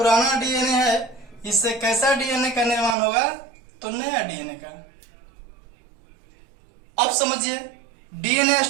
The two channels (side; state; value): left; drops out; at 3.0 s